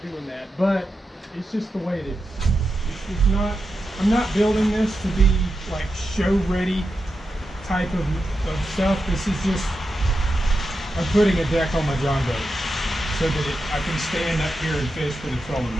doing that, but it's just the way it is. It's not, I'm not building this to be like show ready type of stuff. This is just, I'm putting a deck on my John boat so that I can stand up here and fish with a trolling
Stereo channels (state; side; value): normal; both; correlation 0.89